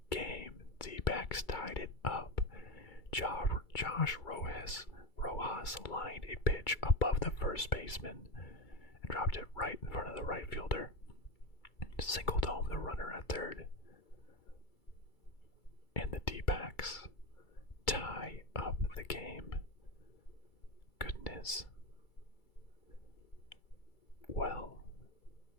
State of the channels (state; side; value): late; right; 2.3 ms